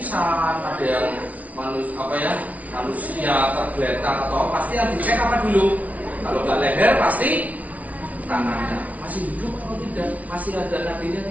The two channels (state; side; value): late; left; 0.070 ms